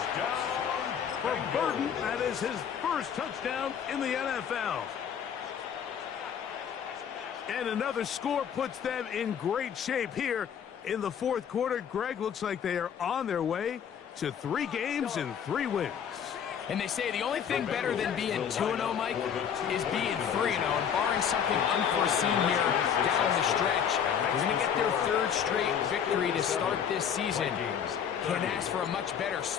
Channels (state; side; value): quieter; right; 8.1 dB